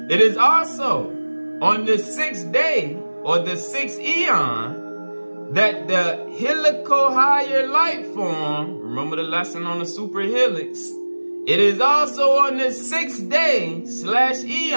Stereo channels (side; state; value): both; inverted; correlation -1.00